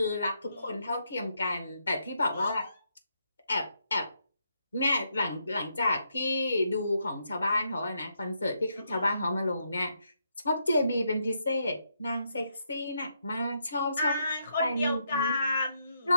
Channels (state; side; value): inverted; both; correlation -0.79